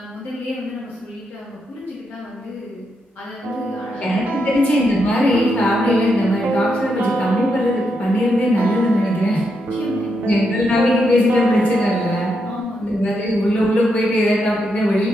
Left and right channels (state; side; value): normal; both; correlation 0.82